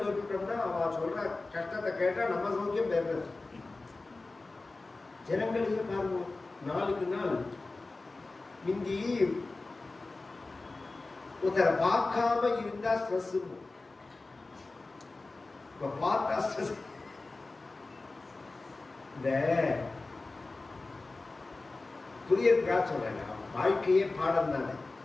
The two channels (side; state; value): right; quieter; 3.4 dB